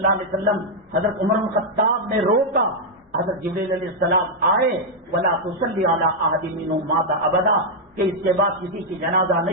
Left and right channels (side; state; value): both; normal; correlation -0.02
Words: علیہ وسلم حضرت عمر الخطاب نے روکا. حضرت جبریل علیہ السلام آئے، ولا تصلی علی احد منهم مات ابدا، کہ اس کے بعد کسی کی جنازہ